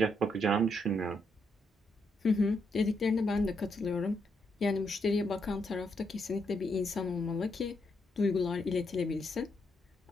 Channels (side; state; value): both; normal; correlation 0.78